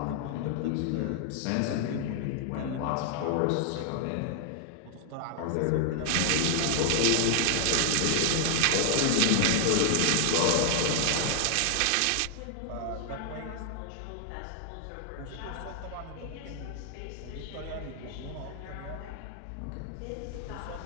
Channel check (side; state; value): both; different; correlation 0.00